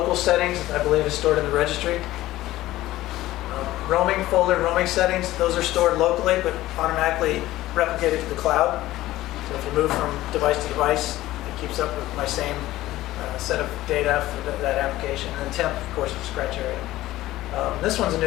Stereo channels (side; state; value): right; quieter; 16.0 dB